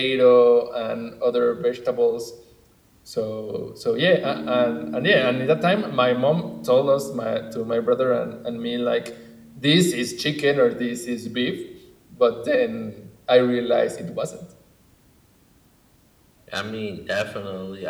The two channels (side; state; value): both; identical; correlation 1.00